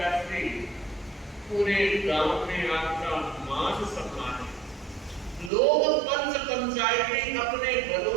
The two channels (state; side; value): drops out; left; at 5.5 s